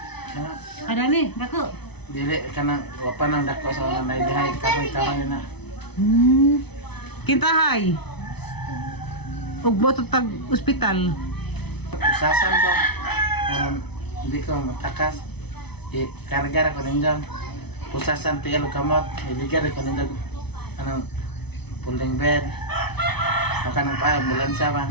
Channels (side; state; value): right; late; 0.99 ms